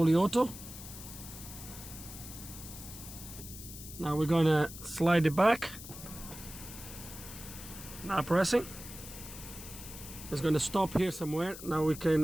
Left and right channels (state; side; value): noise; left; hiss, 13 dB below the sound